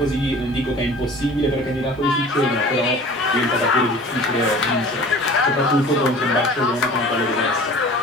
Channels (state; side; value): normal; both; correlation 0.44